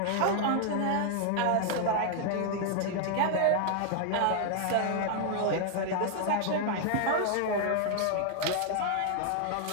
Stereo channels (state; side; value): different; both; correlation 0.00